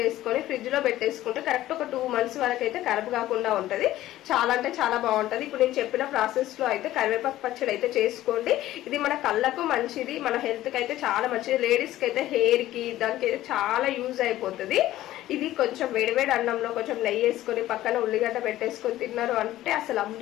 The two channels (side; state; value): right; quieter; 14.7 dB